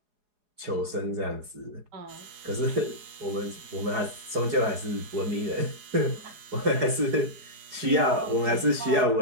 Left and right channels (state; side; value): late; left; 4.8 ms